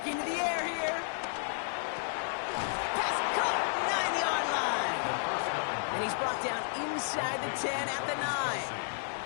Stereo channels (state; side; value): silent; right; digital silence